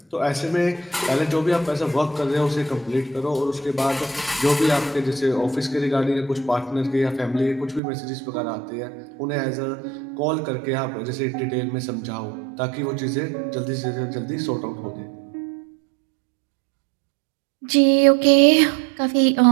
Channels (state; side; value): drops out; left; at 7.8 s